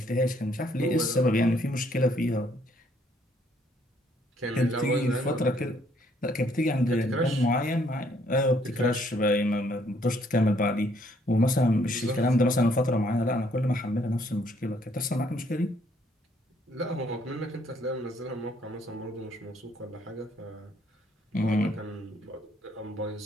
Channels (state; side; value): normal; both; correlation 0.67